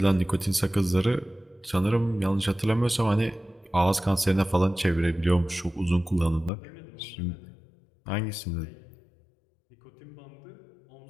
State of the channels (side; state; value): right; drops out; at 6.5 s